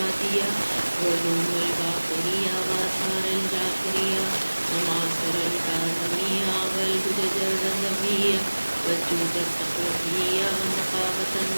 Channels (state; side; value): inverted; both; correlation -1.00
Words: وعلوم الباقرية وآثار الجعفرية ومعاصر الكاظمية والهدج الرضوية والجود التقوية والنقابة